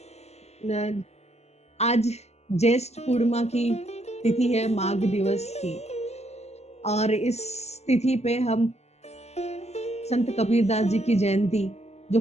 न- आज ज्येष्ठ पूर्णिमा की तिथि है, माघ दिवस की। और इस तिथि पे हम संत कबीरदास जी की जयंती,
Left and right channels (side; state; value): right; late; 0.31 ms